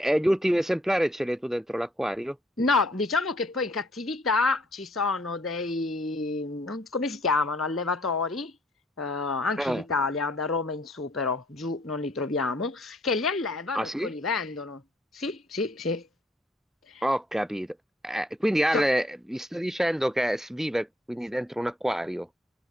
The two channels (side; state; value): both; normal; correlation 0.65